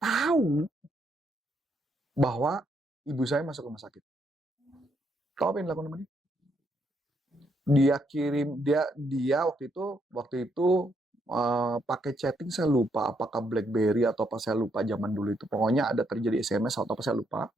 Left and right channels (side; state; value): both; normal; correlation 0.75